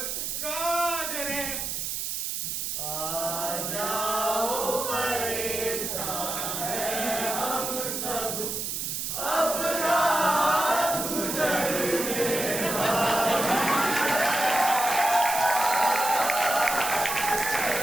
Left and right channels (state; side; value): noise; right; hiss, 3 dB below the sound